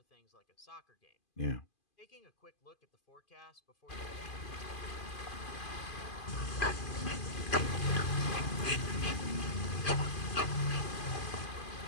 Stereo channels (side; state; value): right; late; 2.5 ms